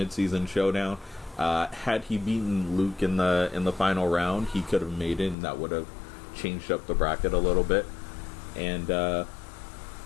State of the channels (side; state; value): right; drops out; at 5.4 s